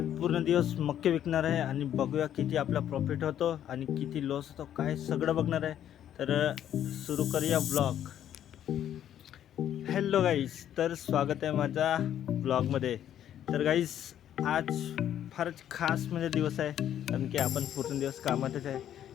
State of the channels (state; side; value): quieter; right; 10.6 dB